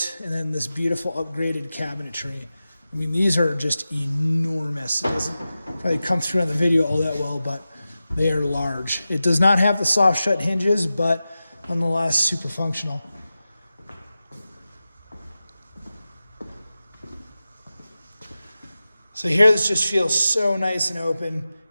and then this beautiful upgraded cabinetry. I mean, these are just enormous. It doesn't probably come through on the video all that well, but they are large. It does not have the soft shut hinges, but nonetheless super functional. So here this just feels so nice and open,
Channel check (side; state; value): both; inverted; correlation -0.94